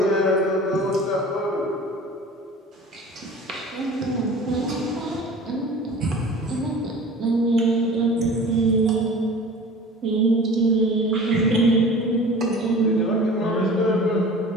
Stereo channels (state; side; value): normal; both; correlation 0.41